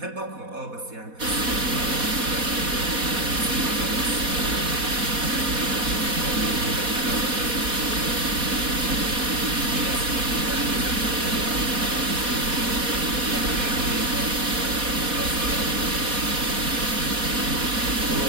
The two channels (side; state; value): left; late; 4.1 ms